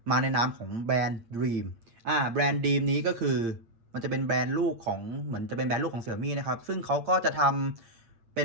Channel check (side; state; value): left; late; 8.7 ms